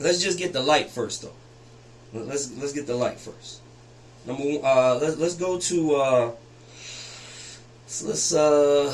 just get the light first, though. Let's get the light first. Number one, let's go to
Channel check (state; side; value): identical; both; correlation 1.00